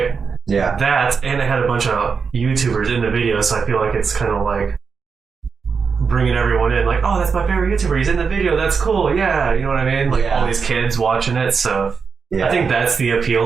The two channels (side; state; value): left; quieter; 5.5 dB